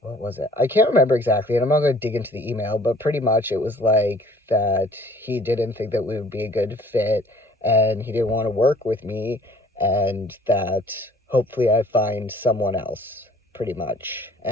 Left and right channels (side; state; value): both; normal; correlation 0.54